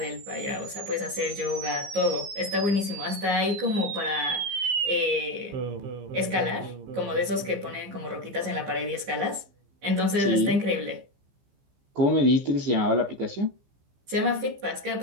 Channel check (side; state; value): left; late; 15 ms